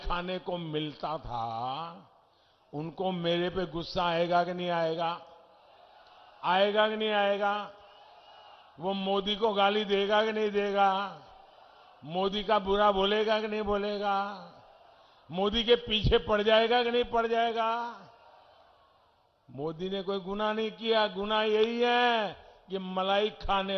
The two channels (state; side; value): identical; both; correlation 1.00